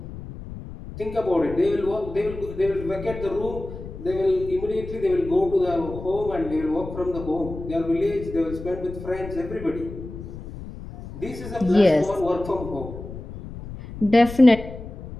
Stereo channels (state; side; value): noise; left; rumble, 12 dB below the sound